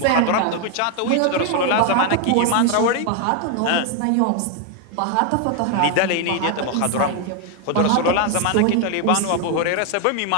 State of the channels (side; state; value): both; different; correlation 0.01